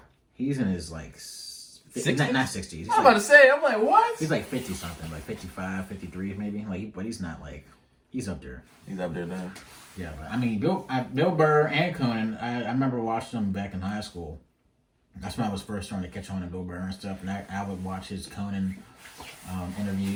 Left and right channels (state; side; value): identical; both; correlation 1.00